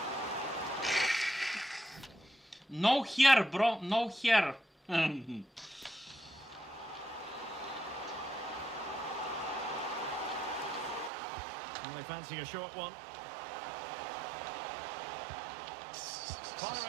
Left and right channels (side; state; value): left; drops out; at 11.1 s